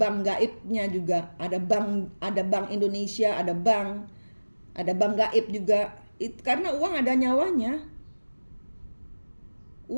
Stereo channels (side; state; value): both; inverted; correlation -1.00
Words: gaibnya juga, ada bank Indonesia, ada bank gaib juga. Karena uang ada nyawanya.